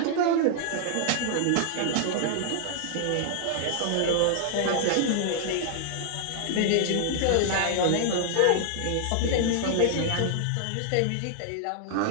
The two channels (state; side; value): different; both; correlation -0.01